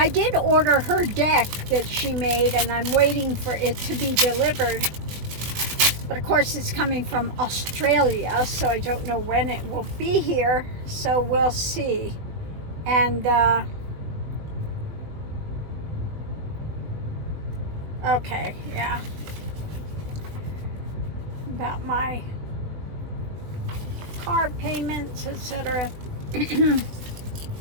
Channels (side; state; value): left; late; 20 ms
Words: did order her deck that she made, and I'm waiting for it to be delivered. But of course, it's coming from Australia, so I don't know when it will be here. So we'll see. And okay, yeah. About my car payments, etc.